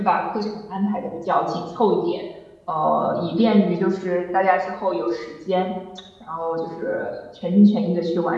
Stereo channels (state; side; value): identical; both; correlation 1.00